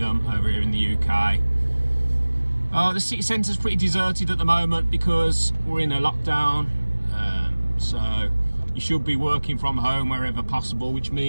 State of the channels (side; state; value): both; inverted; correlation -1.00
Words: over here in the UK. The city centre is pretty deserted at the moment because we're in a lockdown. So you should be working from home wherever possible, which